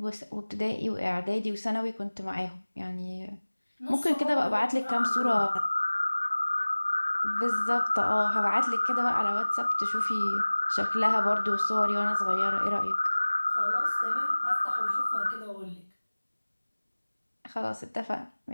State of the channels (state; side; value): inverted; both; correlation -1.00